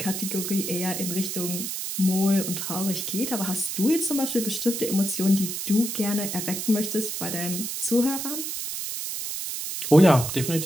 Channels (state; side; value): noise; right; hiss, 4 dB below the sound